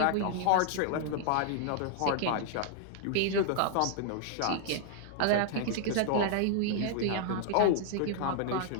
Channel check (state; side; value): different; both; correlation -0.01